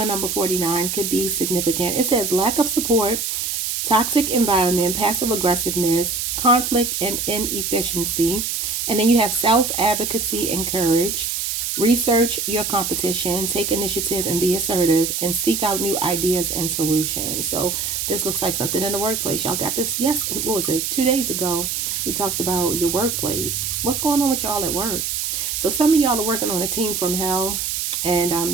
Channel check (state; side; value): noise; right; hiss, 2 dB below the sound